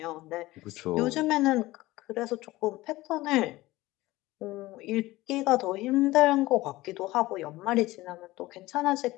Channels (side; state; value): right; quieter; 18.4 dB